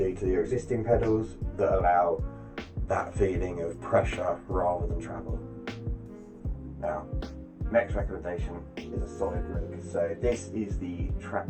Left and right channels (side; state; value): both; identical; correlation 1.00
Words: to your existing pedals that allow that feeling of pressure rather than travel. Now, next recommendation is a solid rig. So this is the